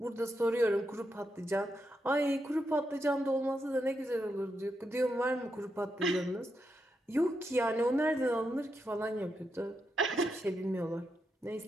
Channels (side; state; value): both; normal; correlation 0.84